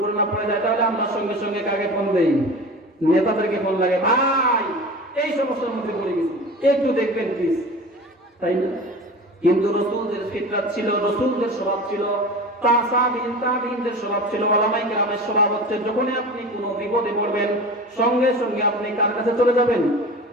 পড়ে যায়, তাহলে আমরা সঙ্গে সঙ্গে কাকে ফোন দেই? নেতাদেরকে ফোন লাগে, ভাই এই সমস্যার মধ্যে পড়ে গেছি, একটু দেখবেন প্লিজ, তাই না? কিন্তু রাসূলদের ফিতরাত ছিল, রাসূলদের স্বভাব ছিল, তাবিঈনদের স্বভাব ছিল, উলামায়ে কেরামের স্বভাব হচ্ছে যখনই আপনি কোনো বিপদে পড়বেন সঙ্গে সঙ্গে আপনি কার কাছে চলে যাবেন?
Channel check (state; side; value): normal; both; correlation 0.34